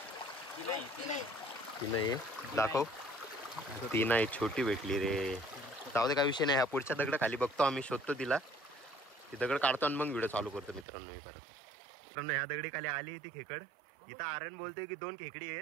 ती नाही दाखव. ती नाही, छोटी भेटली रे. जाऊ दे, काय विषय नाही. ह्या पुढच्या दगड खाली बघतो आम्ही, शोधतो तिला. ती दगड काढतो आणि मग व्हिडिओ चालू करतो मित्रांनो. मी परत मित्रांनो ह्या दगडी खाली आली ती खेकड. इथं आर्यन बोलतोय की 2 खेकडी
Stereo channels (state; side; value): drops out; left; at 10.9 s